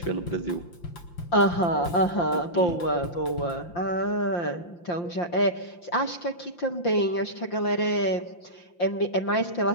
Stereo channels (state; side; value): late; right; 5.8 ms